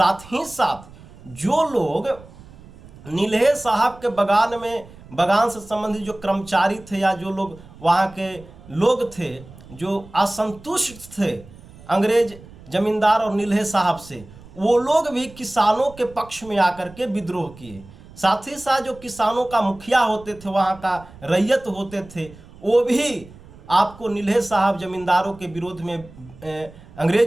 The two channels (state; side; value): noise; right; rumble, 20 dB below the sound